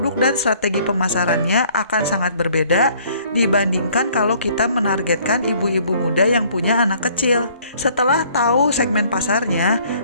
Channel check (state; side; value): inverted; both; correlation -0.59